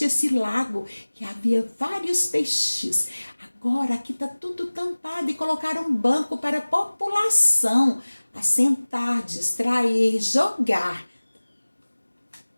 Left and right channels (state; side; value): inverted; both; correlation -1.00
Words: esse lago, que havia vários peixes. Agora aqui está tudo tampado e colocaram um banco para a população assentar, distrair, jogar.